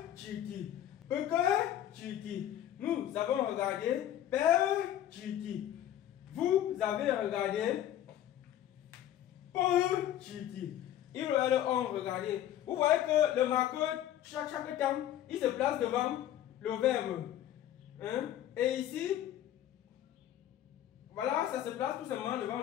chiti, peke chiti, nous avons regardé, pe chiti. Vous avez regardé pour chiti. Ils ont regardé. Vous voyez que le marqueur, chaque temps, il se place devant le verbe. Et ici, voilà, ça se place tout simplement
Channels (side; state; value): right; quieter; 11.8 dB